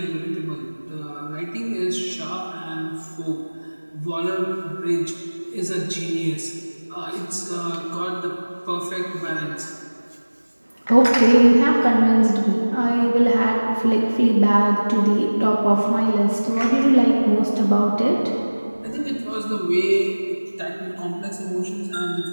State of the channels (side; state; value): both; inverted; correlation -1.00